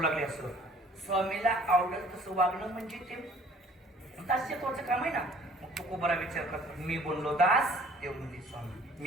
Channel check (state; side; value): normal; both; correlation 0.54